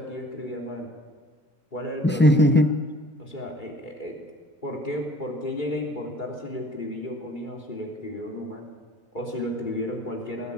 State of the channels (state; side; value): normal; both; correlation 0.52